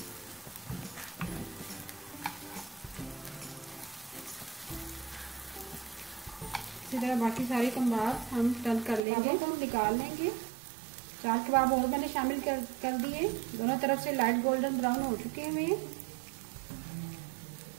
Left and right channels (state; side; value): drops out; left; at 9.0 s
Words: इसी तरह बाकी सारे कबाब हम टर्न कर लेंगे, तो हम निकाल लेंगे। 4 कबाब और मैंने शामिल कर दिए। दोनों तरफ से लाइट गोल्डन ब्राउन हो चुके हैं।